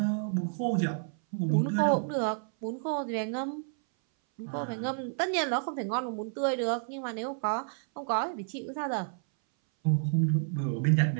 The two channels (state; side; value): silent; left; 58 dB below the other